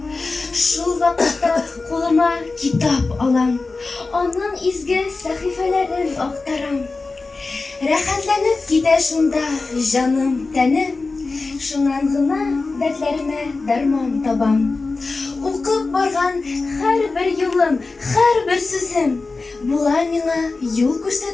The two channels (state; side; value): quieter; right; 3.8 dB